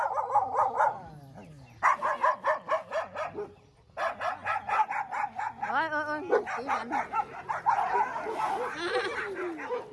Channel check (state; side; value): identical; both; correlation 1.00